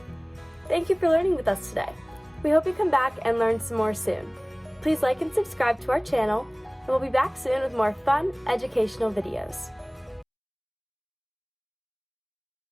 Thank you for learning with us today. We hope you come back and learn some more soon. Please like and subscribe to our channel, and we'll be back soon with more fun, educational videos.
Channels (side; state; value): both; identical; correlation 1.00